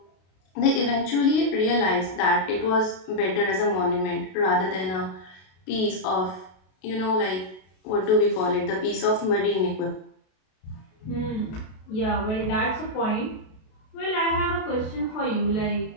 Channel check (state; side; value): late; right; 32 ms